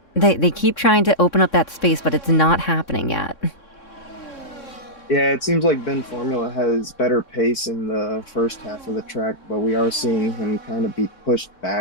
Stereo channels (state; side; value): late; right; 3.6 ms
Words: They keep trying to open up that space, but it's not happening yet. Yeah, it seems like Ben Formula has better pace in the first half of the track, but we are seeing him kind of be pushed